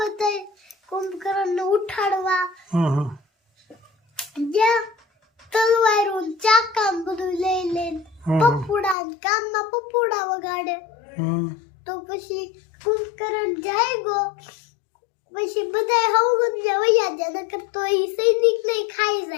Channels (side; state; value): right; drops out; at 9.0 s